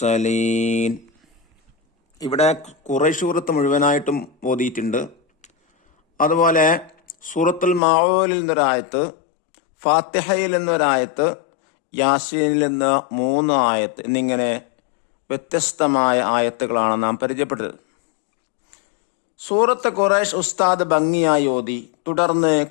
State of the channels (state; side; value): drops out; right; at 7.8 s